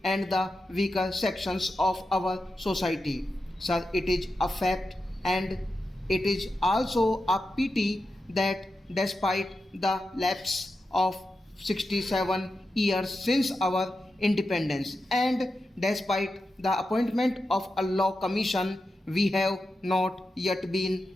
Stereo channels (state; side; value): normal; both; correlation 0.90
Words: and the weaker sections of our society. Sir, it is a fact and it is also a pity that despite the lapse of 67 years since our independence and despite the appointment of a law commission, we have not yet